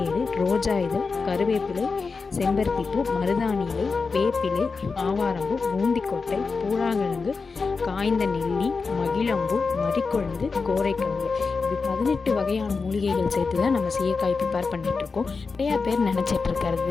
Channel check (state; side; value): quieter; right; 4.6 dB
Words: ரோஜா இதழ், கருவேப்பிலை, செம்பருத்திப்பூ, மருதாணி இலை, வேப்பிலை, ஆவாரம்பூ, பூந்திக்கொட்டை, பூழாங்கிழங்கு, காய்ந்த நெல்லி, மகிழம்பூ, மறிக்கொழுந்து, கோரைக்கிழங்கு, இது 18 வகையான மூலிகைகள் சேர்த்து தான் நம்ம சீயக்காய் ப்ரிப்பேர் பண்ணிகிட்ருக்கோம். நிறையா பேர்